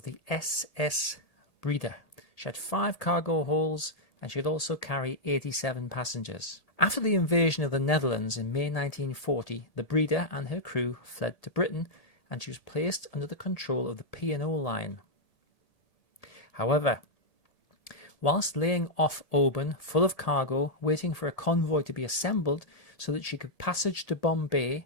the SS Breda. She had 5 cargo holds and she could also carry 87 passengers. After the invasion of the Netherlands in May 1940, the Breda and her crew fled to Britain and she was placed under the control of the P&O line. However, whilst laying off Oban full of cargo, waiting for a convoy to be assembled so that she could passage to Bombay,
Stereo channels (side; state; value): right; late; 1.8 ms